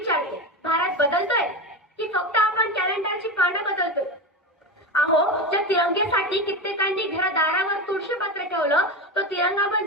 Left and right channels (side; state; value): both; normal; correlation 0.20